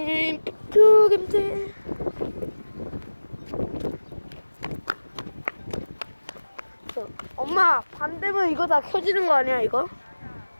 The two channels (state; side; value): inverted; both; correlation -1.00